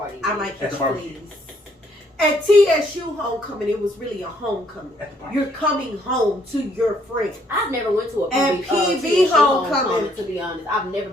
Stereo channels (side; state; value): both; normal; correlation 0.67